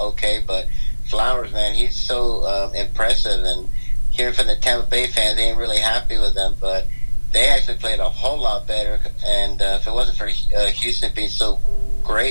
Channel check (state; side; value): inverted; both; correlation -1.00